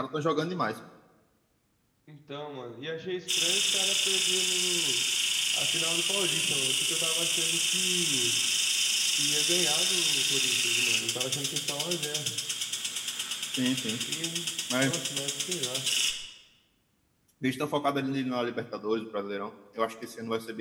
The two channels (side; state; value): both; identical; correlation 1.00